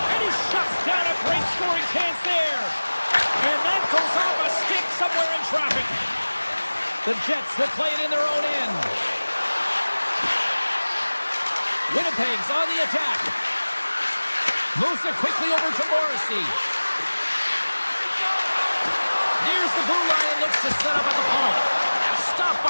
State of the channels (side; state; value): both; inverted; correlation -1.00